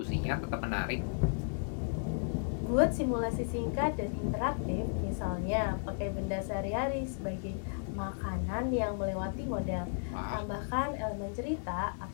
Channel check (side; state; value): right; silent; digital silence